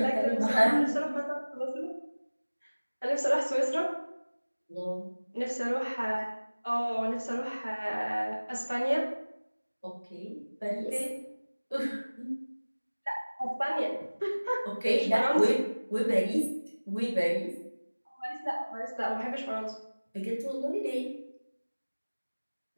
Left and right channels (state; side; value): inverted; both; correlation -1.00